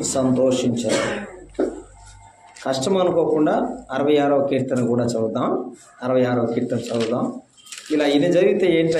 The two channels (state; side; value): identical; both; correlation 1.00